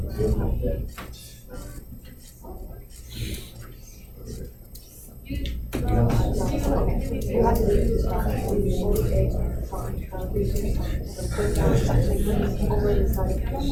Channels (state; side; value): identical; both; correlation 1.00